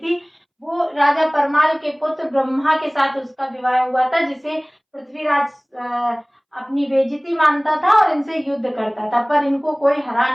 वो राजा परमाल के पुत्र ब्रह्मा के साथ उसका विवाह हुआ था, जिसे पृथ्वीराज अपनी बेइज्जती मानता था और इनसे युद्ध करता था, पर इनको कोई हरा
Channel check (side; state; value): both; identical; correlation 1.00